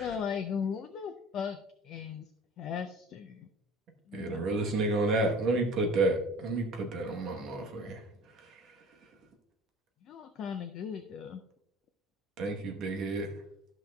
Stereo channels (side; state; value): both; normal; correlation 0.44